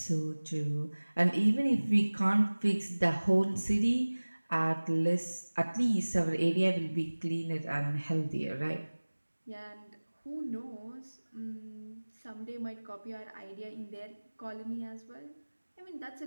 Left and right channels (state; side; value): inverted; both; correlation -1.00